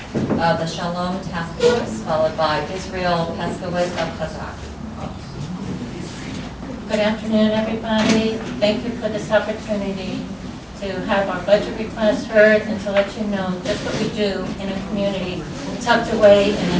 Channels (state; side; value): identical; both; correlation 1.00